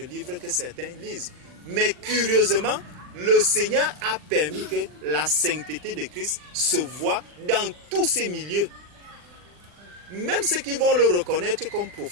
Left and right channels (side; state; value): left; late; 40 ms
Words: livres que certains lisent. Mais curieusement, le Seigneur a permis que la sainteté de Christ se voit dans tous ces milieux. Même ceux qui vont le reconnaître comme